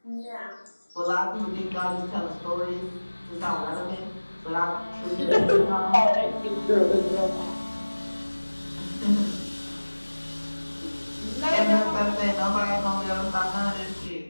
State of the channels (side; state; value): both; inverted; correlation -1.00